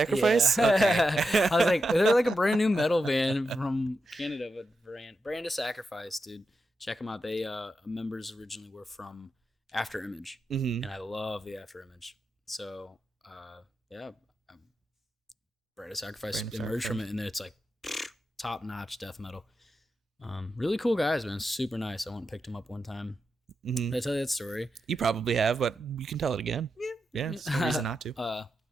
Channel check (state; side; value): normal; both; correlation 0.87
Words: Yeah. Okay. I was like, they're like a brand new metal band from Canada, but Brand of Sacrifice, dude. Check them out. They members originally were from Afterimage, and I love the Afterimage. So Brand of Sacrifice emerged from it, and then it's like top notch death metal. Really cool guys, man. Super nice. I went and picked them up one time. Did I tell you that story? You probably have, but you can tell it again. Yeah. There's no reason not to.